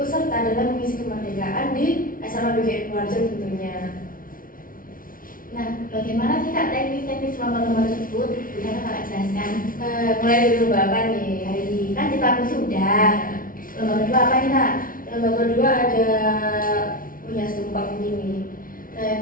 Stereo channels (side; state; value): right; late; 0.40 ms